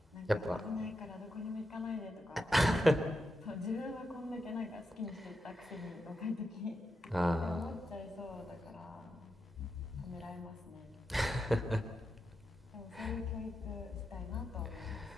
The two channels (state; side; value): normal; both; correlation 0.87